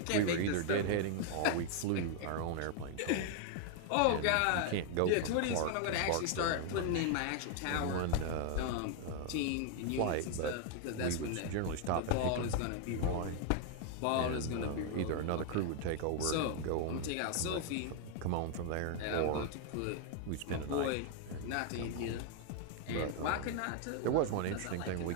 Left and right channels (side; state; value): both; different; correlation 0.00